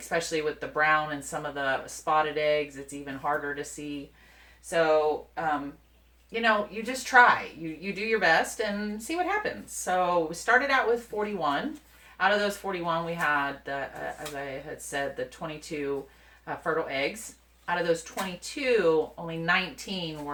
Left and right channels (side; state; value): both; identical; correlation 1.00